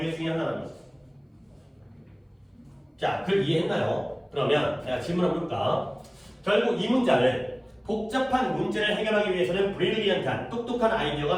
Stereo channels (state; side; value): identical; both; correlation 1.00